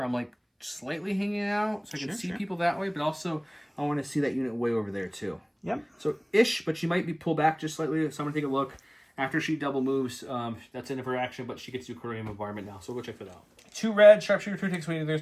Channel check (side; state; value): both; identical; correlation 1.00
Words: I'm like slightly hanging out. So I can see people that way. But also I want to see that unit way over there too. Yep. So ish, but she might be pulled back just slightly. So I'm going to take a look. After she double moves, that's end of her action, but she gets to aquarium environment now. So we'll check that out. 2 red, sharpshooter 2 takes away. There's